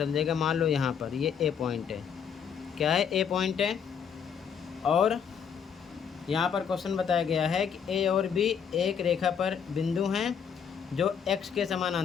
जाएगा। मान लो यहाँ पर ये ए पॉइंट है। क्या है? ए पॉइंट है। और यहाँ पर क्वेश्चन बताया गया है कि ए और बी एक रेखा पर बिंदु हैं जो एक्स के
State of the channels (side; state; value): right; quieter; 7.4 dB